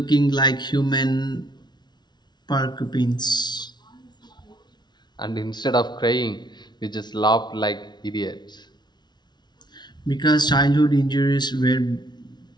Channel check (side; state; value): right; late; 0.20 ms